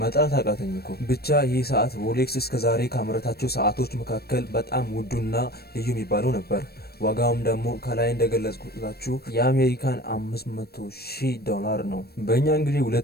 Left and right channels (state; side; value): late; right; 0.46 ms